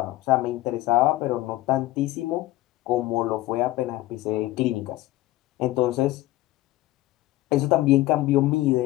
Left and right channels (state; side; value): quieter; right; 17.0 dB